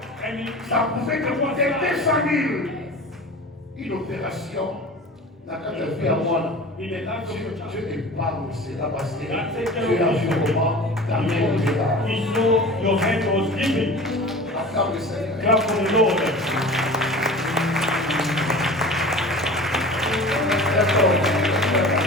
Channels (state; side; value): normal; both; correlation 0.38